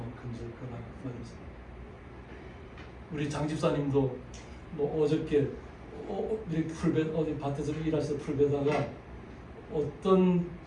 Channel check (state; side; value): identical; both; correlation 1.00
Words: 근질거나 뭐 이러면서. 우리 장 집사님도 뭐 어저께 이렇게 어디 밭에서 일하시다 풀베다가 어떤